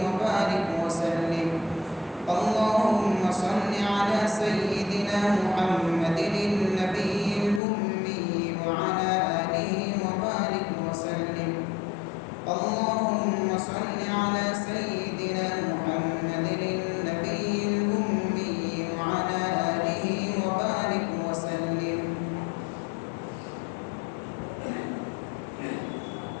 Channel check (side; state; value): right; drops out; at 7.6 s